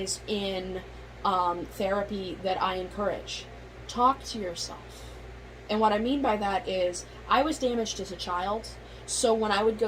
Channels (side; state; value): both; identical; correlation 1.00